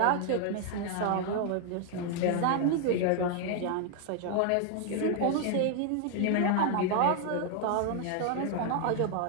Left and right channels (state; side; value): different; both; correlation 0.00